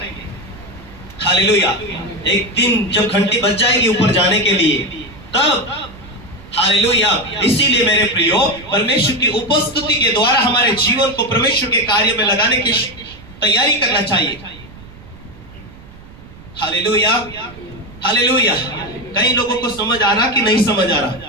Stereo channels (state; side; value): noise; right; rumble, 20 dB below the sound